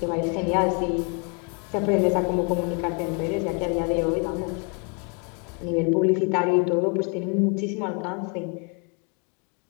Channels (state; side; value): quieter; right; 36.1 dB